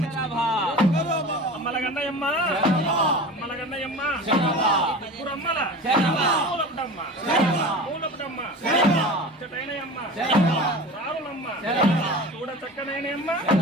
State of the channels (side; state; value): both; normal; correlation 0.34